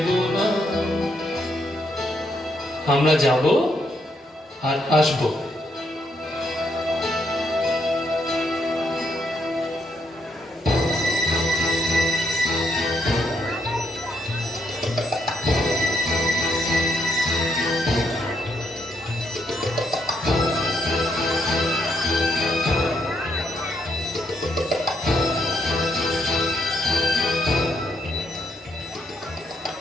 না। আমরা যাব আর আসবো।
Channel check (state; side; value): normal; both; correlation 0.75